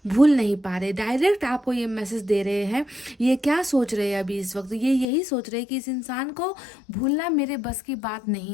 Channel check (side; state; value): right; drops out; at 5.1 s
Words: भूल नहीं पा रहे, डायरेक्ट आपको ये मैसेज दे रहे हैं। ये क्या सोच रहे हैं अभी इस वक्त, ये यही सोच रहे हैं कि इस इंसान को भूलना मेरे बस की बात